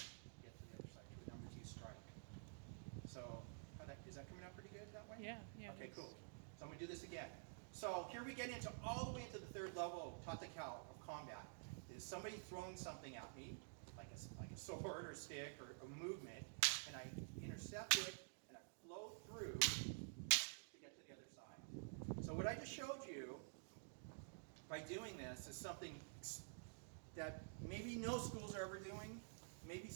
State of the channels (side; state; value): left; silent; digital silence